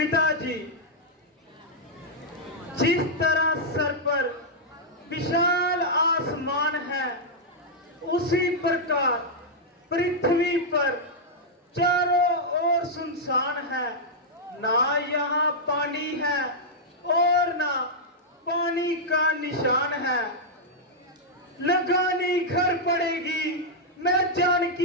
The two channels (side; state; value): both; normal; correlation -0.06